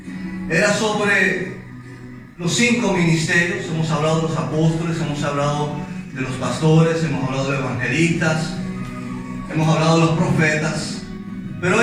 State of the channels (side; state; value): both; identical; correlation 1.00